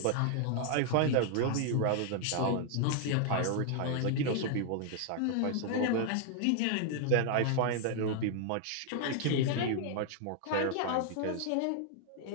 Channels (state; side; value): different; both; correlation 0.00